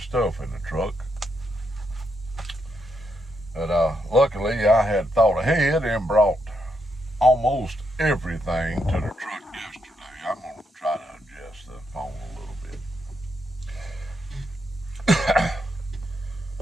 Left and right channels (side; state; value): both; normal; correlation 0.80